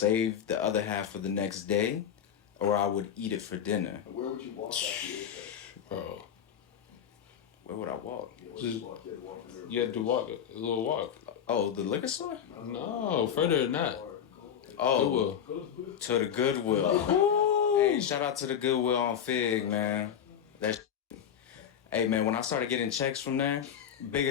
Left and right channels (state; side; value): quieter; right; 8.7 dB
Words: the other half for the next day, or I would eat it for dinner. Where would you walk after you ate that? Bro, where would I walk? You had to walk a little walk. Oh, the liquor store? No, further than that. Oh, Goodwill. To the Goodwill. Hey, shout out to the Goodwill on Fig, man. Hey, man, when I started getting checks from there, bigger